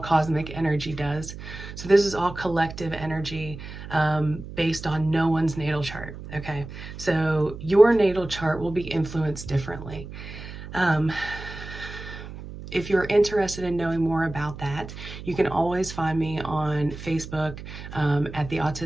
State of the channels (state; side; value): noise; right; hum, 12 dB below the sound